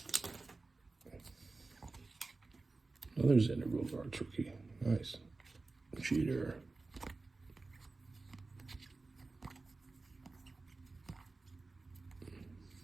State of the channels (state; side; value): quieter; left; 3.6 dB